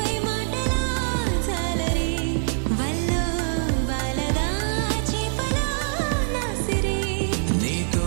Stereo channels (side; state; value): left; silent; digital silence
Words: మాటలా జాలరి వల్లో వాలదా చేపలా నాసిరి నీతో